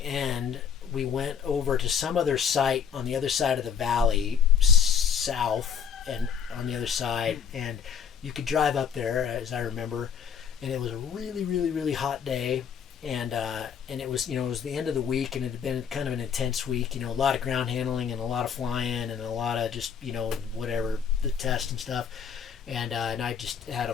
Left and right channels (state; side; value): quieter; right; 7.5 dB